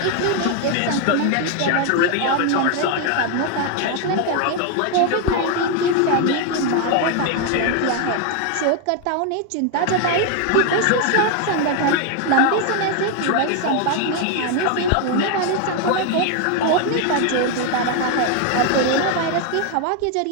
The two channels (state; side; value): different; both; correlation 0.01